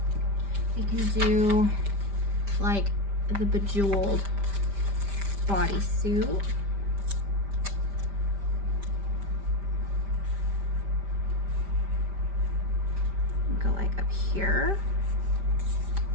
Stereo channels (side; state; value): left; late; 5.1 ms